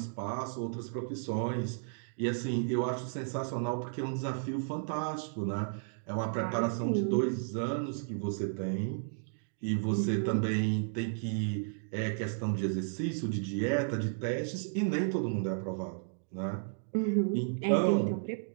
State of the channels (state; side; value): silent; left; digital silence